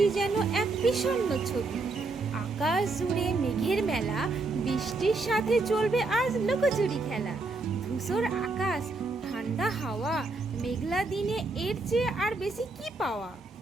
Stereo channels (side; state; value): left; quieter; 3.5 dB